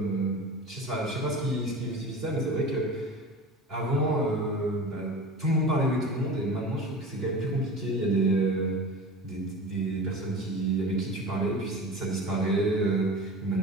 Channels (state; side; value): normal; both; correlation 0.33